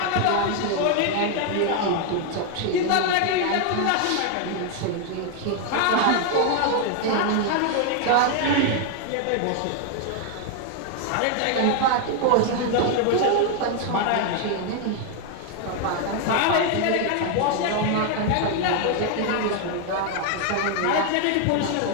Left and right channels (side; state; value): both; different; correlation 0.00